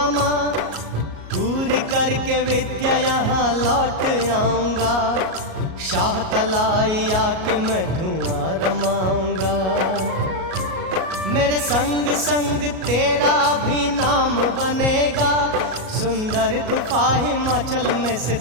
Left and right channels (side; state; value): left; late; 37 ms